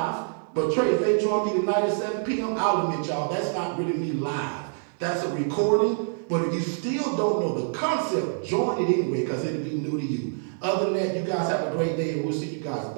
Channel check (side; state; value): left; silent; digital silence